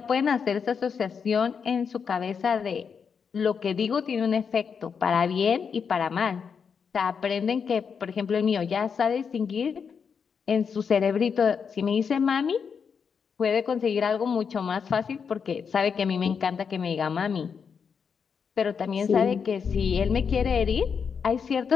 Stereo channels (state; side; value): quieter; right; 6.4 dB